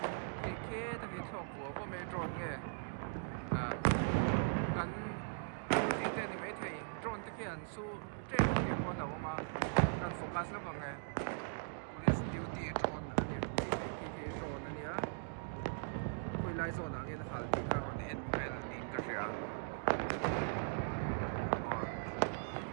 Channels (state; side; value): silent; left; digital silence